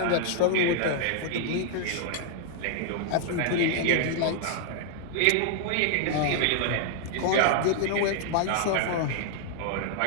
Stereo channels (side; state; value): both; different; correlation 0.00